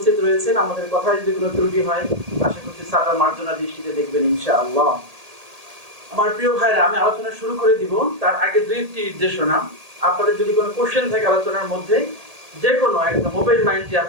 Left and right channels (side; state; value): left; late; 1.8 ms